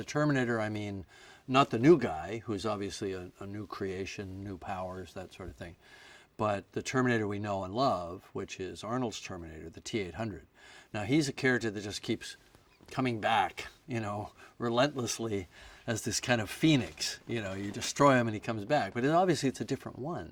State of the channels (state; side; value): identical; both; correlation 1.00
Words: Terminator, I mean not the new guy, who's obviously a new creation, new powers, that sort of thing, but the Terminator we know and love, which is Arnold's Terminator, the T-800. Now, he's a character that just keeps coming back, relentlessly as this kind of phoenix. You destroy him and he comes back. But obviously it's a different